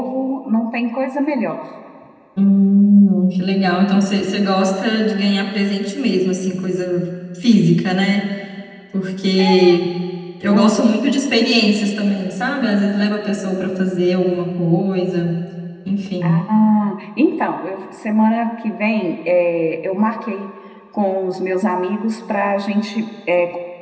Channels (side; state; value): both; identical; correlation 1.00